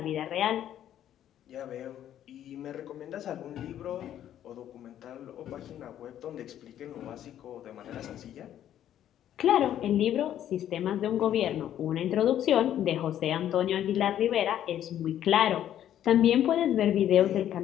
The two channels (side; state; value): right; quieter; 11.0 dB